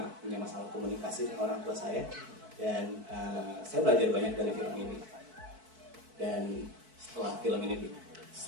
punya masalah komunikasi dengan orang tua saya, dan saya belajar banyak dari film ini. Dan setelah film ini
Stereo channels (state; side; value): late; left; 4.6 ms